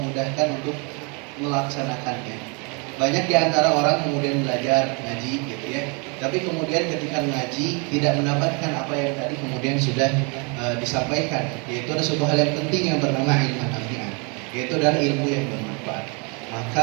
mudahkan untuk melaksanakannya. Banyak di antara orang kemudian belajar ngaji gitu ya, tapi kemudian ketika ngaji tidak mendapatkan apa yang tadi kemudian sudah disampaikan, yaitu ada suatu hal yang penting yang bernama ilmu nafi'an, yaitu adalah ilmu yang bermanfaat.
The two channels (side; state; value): left; quieter; 33.0 dB